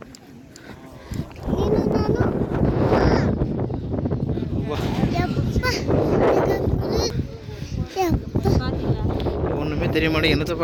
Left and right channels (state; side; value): identical; both; correlation 1.00